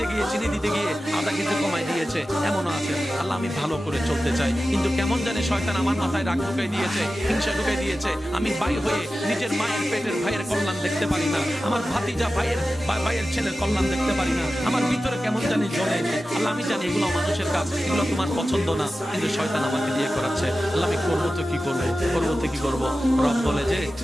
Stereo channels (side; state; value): both; normal; correlation 0.94